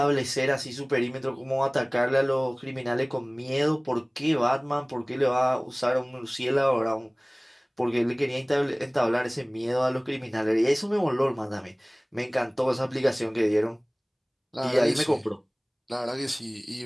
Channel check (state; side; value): identical; both; correlation 1.00